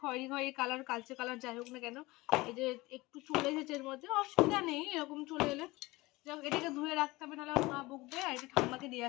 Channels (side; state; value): right; quieter; 21.2 dB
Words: খয়েরি কালার, কালচে কালার, যাই হোক না কেন, এই যে একটু চলে এসেছে এর মধ্যে। অসুবিধা নেই এরকম চলে এলে, যাক এটাকে ধুয়ে রাখতে হবে, নাহলে মা বকবে। আর এটা ঠাম্মাকে দিয়ে